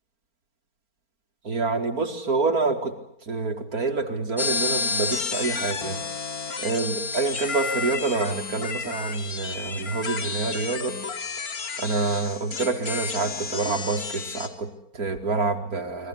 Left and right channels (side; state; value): left; late; 4.4 ms